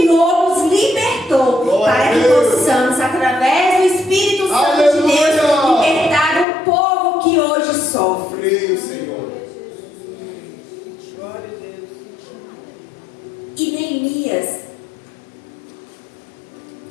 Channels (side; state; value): right; drops out; at 6.5 s